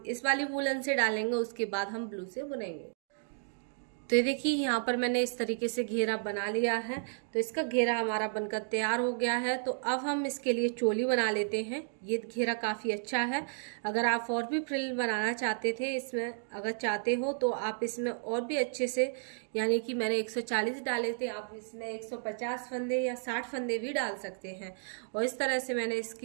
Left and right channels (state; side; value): silent; left; digital silence